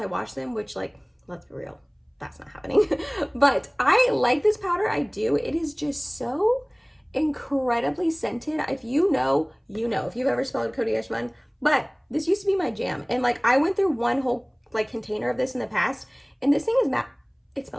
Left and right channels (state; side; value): identical; both; correlation 1.00